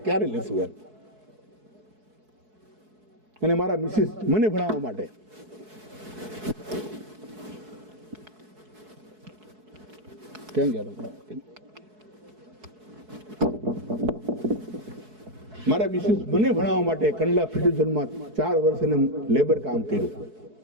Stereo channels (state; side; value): late; left; 4.7 ms